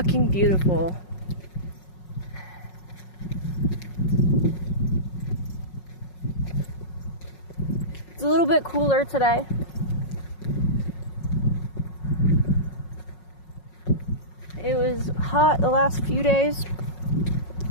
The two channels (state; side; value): late; right; 5.5 ms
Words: beautiful. It's a little bit cooler today. It was hot the last few days.